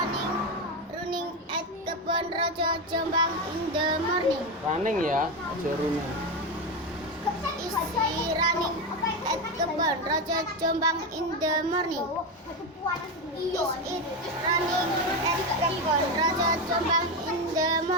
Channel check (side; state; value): both; normal; correlation 0.14